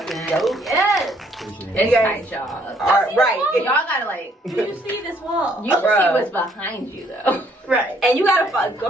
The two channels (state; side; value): normal; both; correlation 0.65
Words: dope. Yes. It's tight, y'all. Right. Y'all gotta Do you see this wall? you can see what's behind you though. Right. And you gotta go